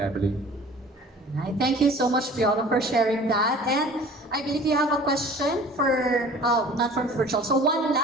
Right. Thank you so much, Piolo, for sharing that. And I believe you have a question for, not from virtual, so one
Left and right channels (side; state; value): both; normal; correlation 0.46